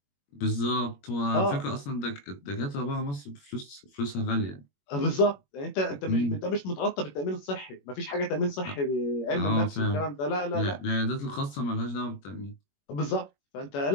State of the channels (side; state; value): right; late; 21 ms